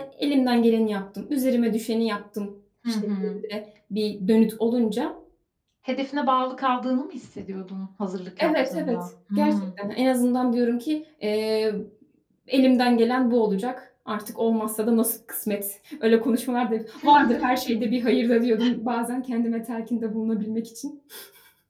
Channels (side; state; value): both; identical; correlation 1.00